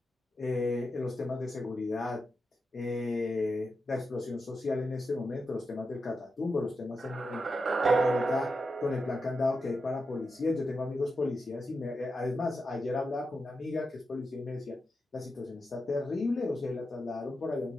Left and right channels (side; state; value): both; normal; correlation 0.88